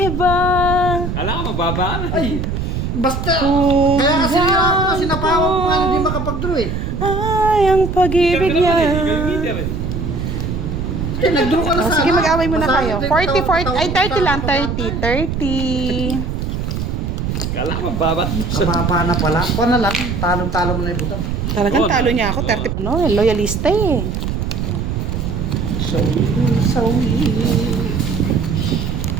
iba. Kala ko mababa. Ay, basta. Kung Kaya kasi ako, sinapawan ko nga hindi makapag-draw eh. ay ang pag-ibig niya. Eh, nag-draw ka na Oh, sana. sige, mag-away muna Basta kayo. hindi 40, 40, ay 30 lang, tawag- 30. Kala ko mababa. Kababa na pala. Kuha na lang. Talong-talo mo na yung butang. Talagang Oh, talo niya ako, 30. No, loyalista eh.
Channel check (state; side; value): noise; right; rumble, 3 dB below the sound